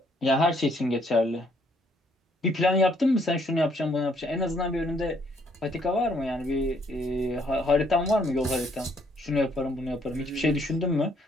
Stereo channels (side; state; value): both; normal; correlation 0.67